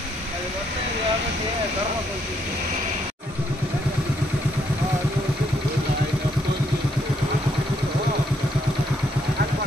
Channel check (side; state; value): both; normal; correlation 0.73